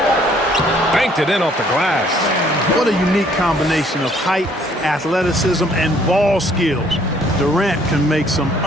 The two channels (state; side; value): normal; both; correlation 0.62